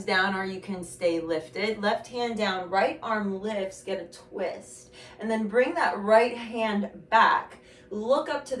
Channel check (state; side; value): identical; both; correlation 1.00